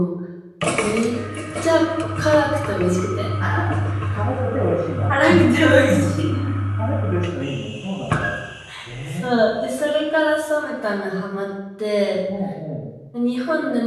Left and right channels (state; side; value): identical; both; correlation 1.00